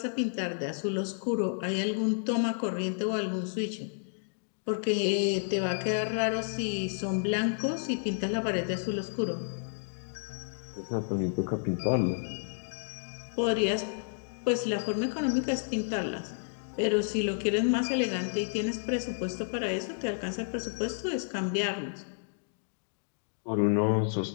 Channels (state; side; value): silent; right; digital silence